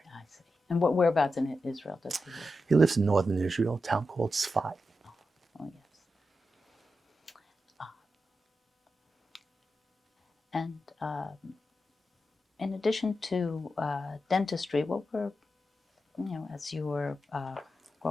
I see. And whereabouts in Israel does he live? He lives in northern Israel, a town called Sfat. Oh, yes. And in addition to dentistry, what were, as you were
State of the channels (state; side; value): normal; both; correlation 0.89